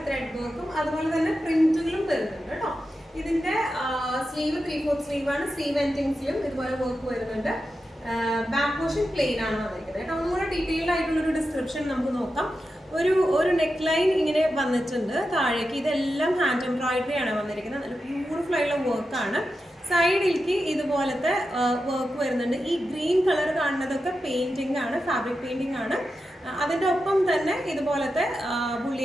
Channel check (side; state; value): both; normal; correlation 0.90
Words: ത്രെഡ് വർക്കും അതുപോലെ തന്നെ പ്രിന്റുകളും വരുന്നുണ്ട് കേട്ടോ. ഇതിന്റെ സ്ലീവ് 3/4 സ്ലീവ് ആണ്. സ്ലീവ് എൻഡിങ്സിലും ഇതുപോലെ വർക്ക് വരുന്നുണ്ട്. ബാക്ക് പോർഷൻ പ്ലെയിൻ ആണ് വന്നിരിക്കുന്നത് കേട്ടോ. ഒന്നുകൂടെ ഡീറ്റെയിൽഡ് ആയിട്ടുള്ളൊരു ഡിസ്ക്രിപ്ഷൻ നമുക്ക് നോക്കാം. ഒരു നെക്ക് ലൈൻ ഇങ്ങനെ വന്നിട്ടുണ്ട് താഴേക്ക്. ഇതെല്ലാം ഹാൻഡ് എംബ്രോയിഡറി ആണ് വന്നിരിക്കുന്നത്. നല്ല ബ്യൂട്ടിഫുൾ ആയിട്ടുള്ള വർക്കാണ്. സൈഡിലേക്ക് ഇതുപോലത്തെ വർക്ക് വരുന്നുണ്ട്. ഈ ഗ്രീൻ കളർ കാണുന്നതൊക്കെ പെയിന്റിംഗ് ആണ്, ഫാബ്രിക് പെയിന്റിംഗ് ആണ്. അതിൻ്റെ ഒപ്പം തന്നെ ഇതുപോലത്തെ